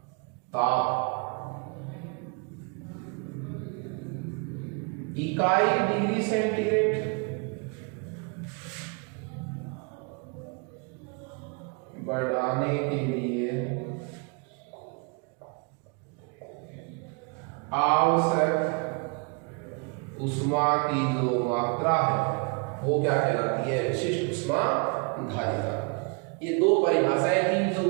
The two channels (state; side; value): quieter; left; 34.3 dB